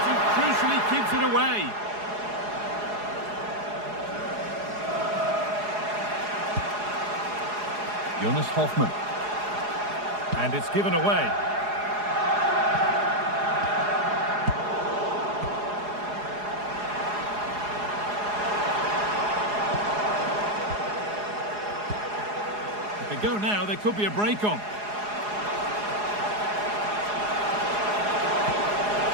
and crucially keeps it away. Jonas Hoffmann. And it's given away. If they go now, there could be a break on.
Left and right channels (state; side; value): late; left; 4.8 ms